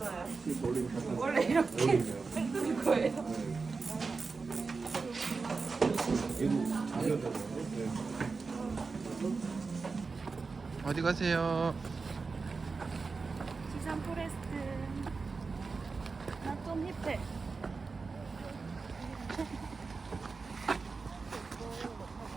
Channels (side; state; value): left; quieter; 4.4 dB